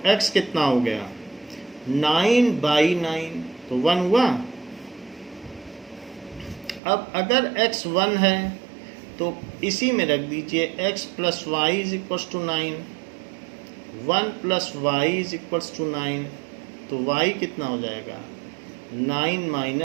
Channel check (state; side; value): drops out; left; at 6.8 s